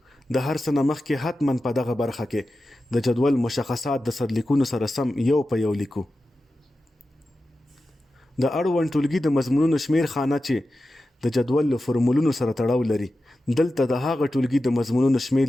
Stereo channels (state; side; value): normal; both; correlation 0.93